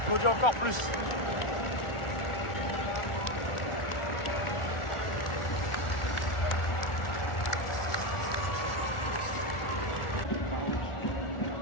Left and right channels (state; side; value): late; right; 1.4 ms